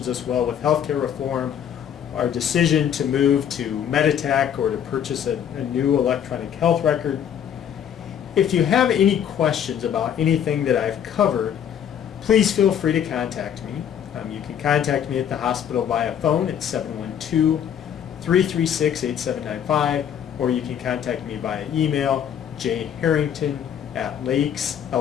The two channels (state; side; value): quieter; right; 9.1 dB